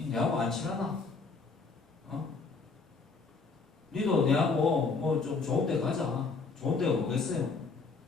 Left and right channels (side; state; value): right; quieter; 4.4 dB